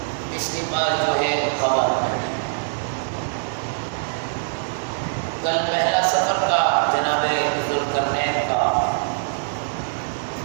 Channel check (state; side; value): silent; left; digital silence